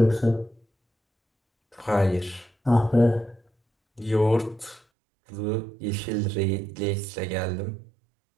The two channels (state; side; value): drops out; left; at 4.8 s